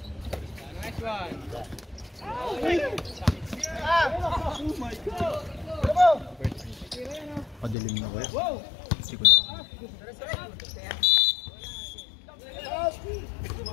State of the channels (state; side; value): drops out; right; at 7.8 s